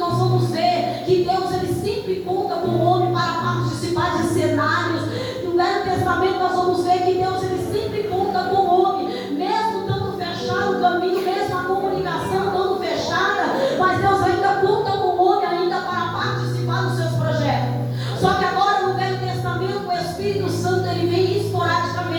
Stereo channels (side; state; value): both; identical; correlation 1.00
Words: vamos ver que Deus ele sempre conta com o homem para participar de cenários. No Velho Testamento nós vamos ver que Deus ele sempre conta com o homem, mesmo estando fechado o caminho, mesmo a comunicação estando fechada, mas Deus ainda conta com o homem ainda para participar dos seus projetos. Só que agora no Velho Testamento o Espírito Santo ele vem